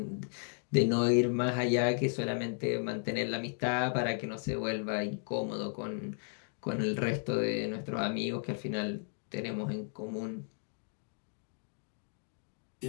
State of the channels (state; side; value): silent; right; 55 dB below the other